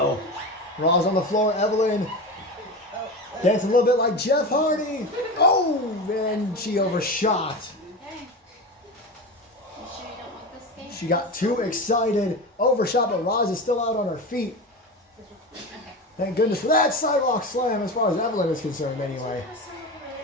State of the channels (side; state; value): both; normal; correlation 0.25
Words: Raw's on the floor. Evelyn dancing a little bit like Jeff Hardy. Oh, and she overshot. Okay. You sure you don't want this game? She got too excited. Overshot, but Roz is still out on her feet. Okay. Thank goodness for that sidewalk slam as far as Evelyn is concerned anyway.